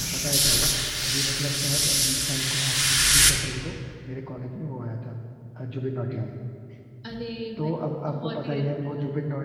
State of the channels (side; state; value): both; identical; correlation 1.00